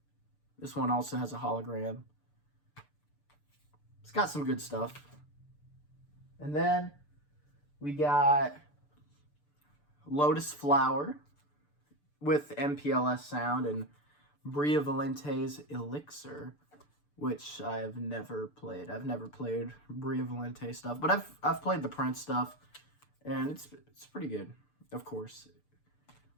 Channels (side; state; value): right; late; 6.8 ms